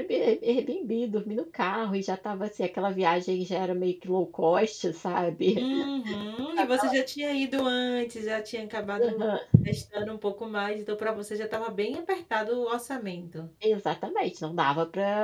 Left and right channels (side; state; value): both; identical; correlation 1.00